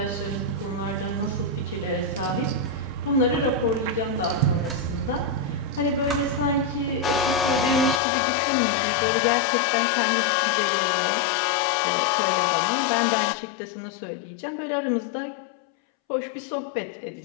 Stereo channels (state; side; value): drops out; right; at 8.0 s